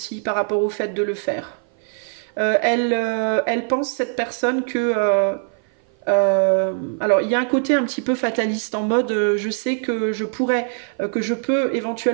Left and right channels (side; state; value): left; silent; 56 dB below the other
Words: par rapport au fait de le faire. Elle pense, cette personne, que... alors il y a un côté un petit peu fataliste en mode je sais que je pourrais, que je peux